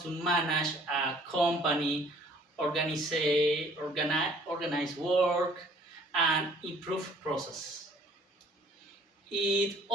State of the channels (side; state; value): both; normal; correlation 0.56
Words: to manage a company, organize work, and improve process. It